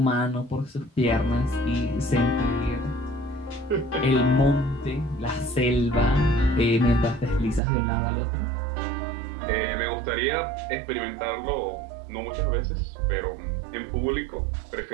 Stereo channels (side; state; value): left; drops out; at 7.6 s